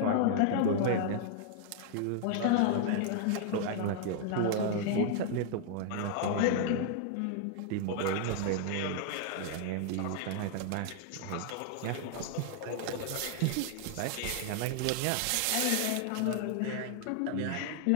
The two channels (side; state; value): both; different; correlation -0.01